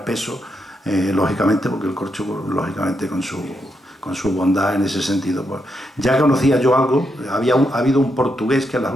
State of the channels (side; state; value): both; normal; correlation 0.82